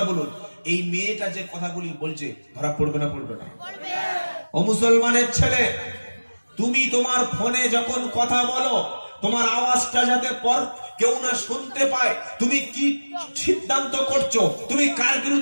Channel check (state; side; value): inverted; both; correlation -1.00